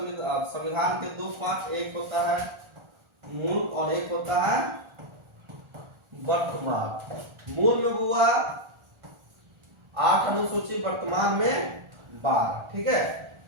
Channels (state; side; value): late; left; 1.4 ms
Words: संविधान के 2 पार्ट, एक होता है मूल और एक होता है वर्तमान। मूल में हुआ 8 अनुसूची, वर्तमान में 12। ठीक है,